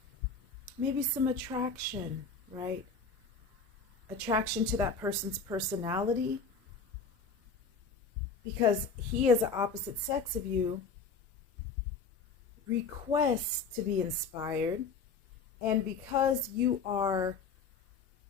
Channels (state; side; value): quieter; right; 4.6 dB